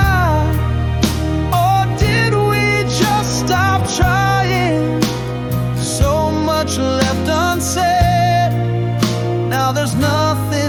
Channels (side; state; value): both; identical; correlation 1.00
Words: Or did we just stop trying? So much left unsaid, now there's